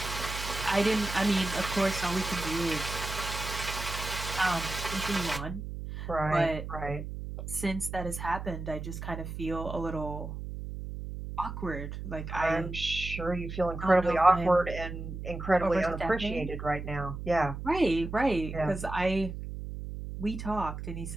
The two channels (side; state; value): right; noise; hum, 7 dB below the sound